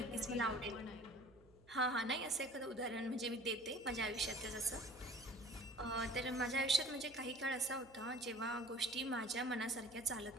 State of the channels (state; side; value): noise; right; hum, 26 dB below the sound